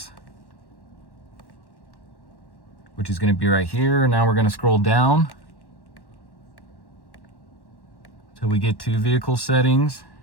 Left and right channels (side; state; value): right; late; 1.1 ms